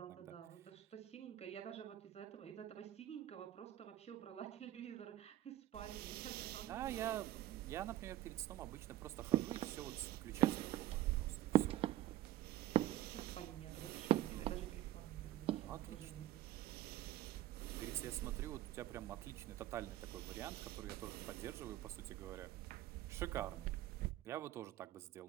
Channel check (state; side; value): quieter; left; 14.1 dB